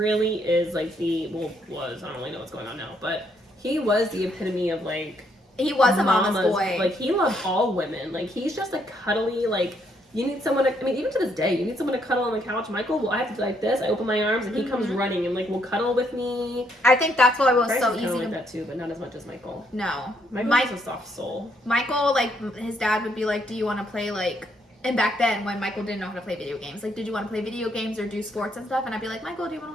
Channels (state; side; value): normal; both; correlation 0.72